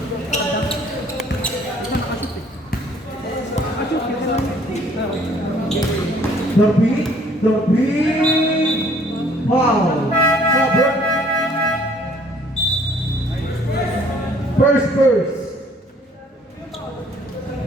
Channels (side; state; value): both; normal; correlation 0.59